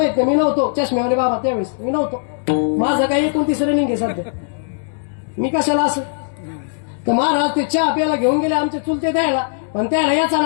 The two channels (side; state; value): right; silent; digital silence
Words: नाही, मी नव्हतो. चष्म्यावाले बाबा त्यावेळेस मी नव्हतो. माझं काही 29 रनिंग आहे सध्या, मी कशाला असं. तर महाराज ते चहा प्यायला घेऊन गेले आमचे चुलते द्यायला, पण त्याला याचा